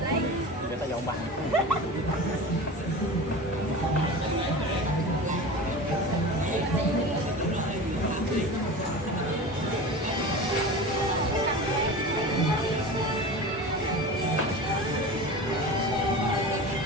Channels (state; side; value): normal; both; correlation 0.32